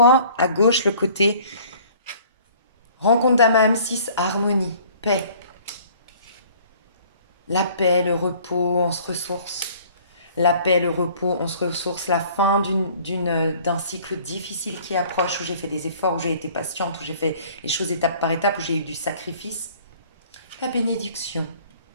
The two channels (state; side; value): inverted; both; correlation -0.53